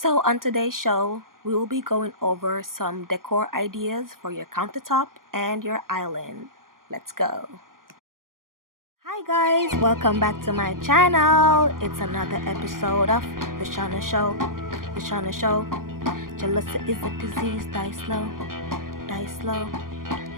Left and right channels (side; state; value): left; late; 0.91 ms